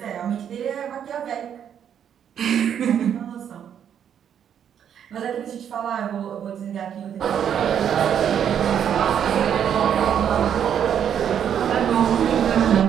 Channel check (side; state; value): left; quieter; 8.9 dB